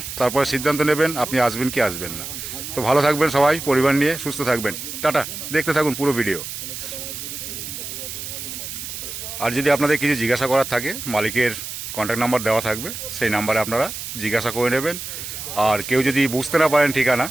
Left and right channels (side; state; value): right; noise; hiss, 8 dB below the sound